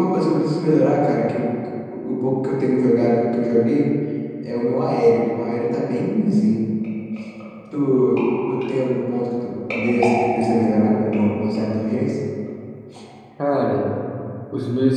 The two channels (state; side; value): identical; both; correlation 1.00